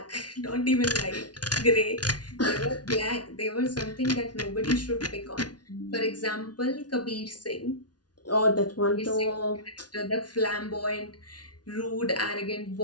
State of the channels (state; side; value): late; right; 0.69 ms